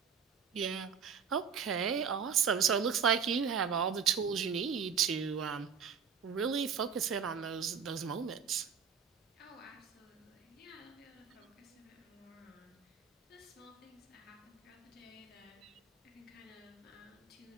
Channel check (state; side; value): quieter; left; 6.8 dB